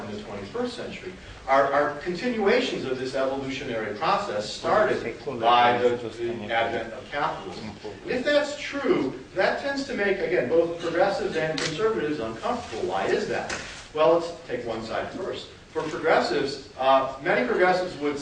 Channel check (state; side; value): identical; both; correlation 1.00